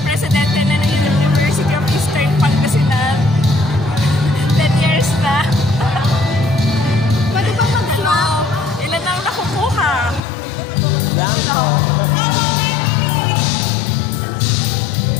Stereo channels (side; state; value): right; drops out; at 10.2 s